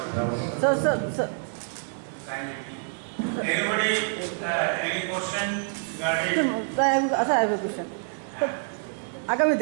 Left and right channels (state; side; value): silent; left; 60 dB below the other